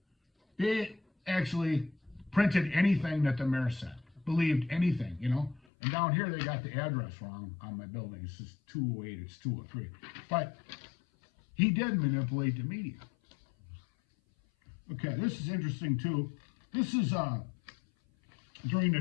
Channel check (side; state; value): right; drops out; at 5.6 s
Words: they actually printed anything that the mayor said, believed anything, you know. And down here, they got the address wrong on my building. It's just 208, it's 203. But he did manipulate the media. Okay, this is interesting, too. This is during the